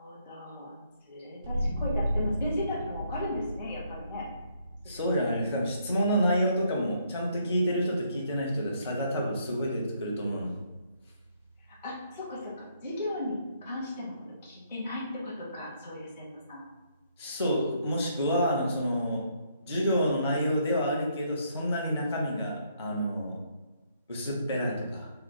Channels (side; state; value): both; inverted; correlation -0.71